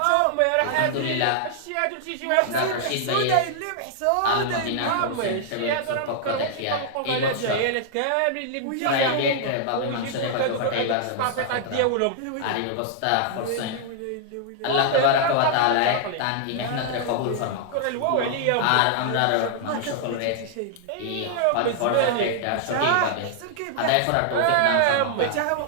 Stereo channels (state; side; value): different; both; correlation -0.01